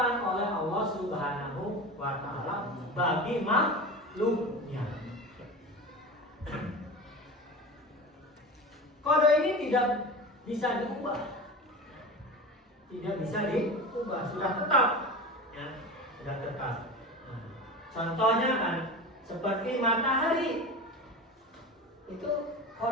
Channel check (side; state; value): both; normal; correlation 0.29